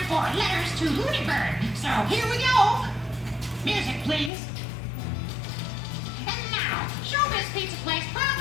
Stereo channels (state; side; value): drops out; right; at 4.3 s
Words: for Letters to Looney Bird. So, here we go. Music, please. And now, Showbiz Pizza Place